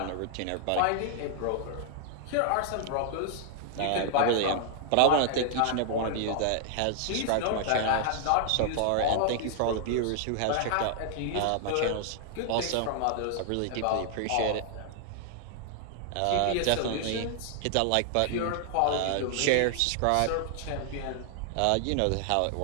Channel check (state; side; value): different; both; correlation 0.00